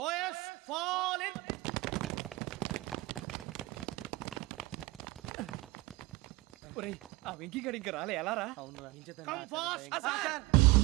fall in. ఒరేయ్ ఆ వెంకీ గడి ఇంకా రాలే, ఎలా రా? Come fast sir.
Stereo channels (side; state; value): left; quieter; 20.2 dB